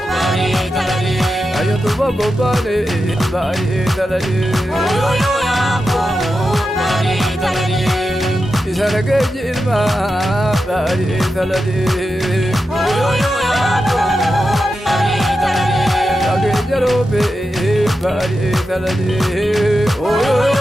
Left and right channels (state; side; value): normal; both; correlation 0.90